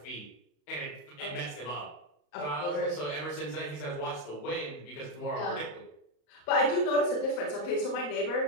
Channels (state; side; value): late; right; 35 ms